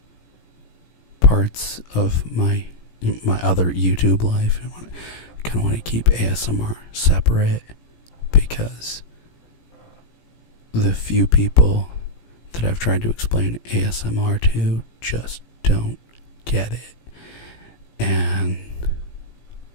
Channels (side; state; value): right; late; 17 ms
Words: parts of my other YouTube life. I kind of want to keep ASMR separate, because the few people that I've tried to explain ASMR to just don't get it. And